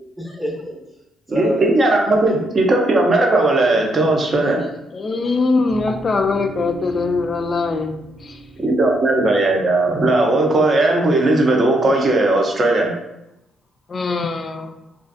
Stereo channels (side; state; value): both; normal; correlation 0.75